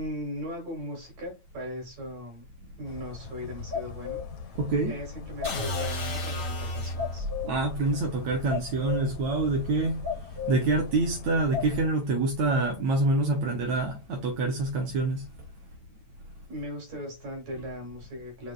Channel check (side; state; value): left; late; 8.9 ms